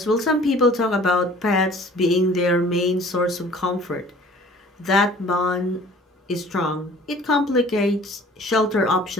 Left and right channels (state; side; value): normal; both; correlation 0.50